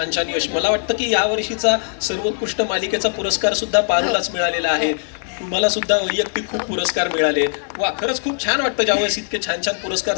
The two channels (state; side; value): silent; right; digital silence